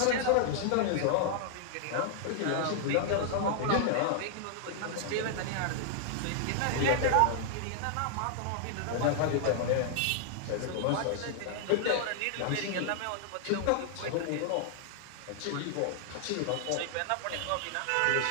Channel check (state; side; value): different; both; correlation 0.00